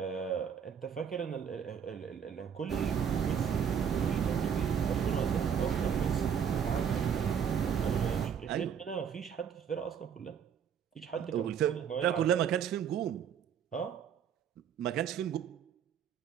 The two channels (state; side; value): quieter; left; 7.9 dB